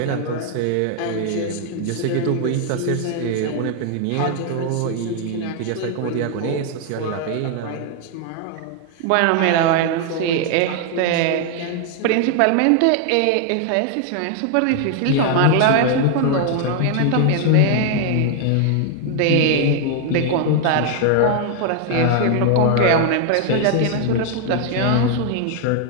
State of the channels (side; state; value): both; different; correlation 0.00